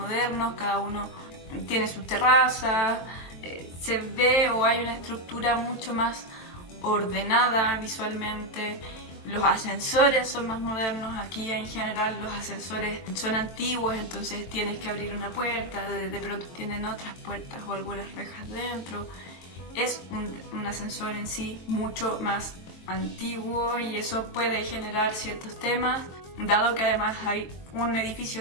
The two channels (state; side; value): late; right; 23 ms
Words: cada uno tiene su terraza, se ve o hay una estructura mucho más ordenada visualmente. Los ascensores son más modernos, aquí en general los ascensores son antiguos, entonces tienes que abrir una puerta, de pronto tienen otras puertas o algunas rejas dentro. Es un ascensor en sí mucho más antiguo y eso puede generar ciertos temas, dado que además hay un edificio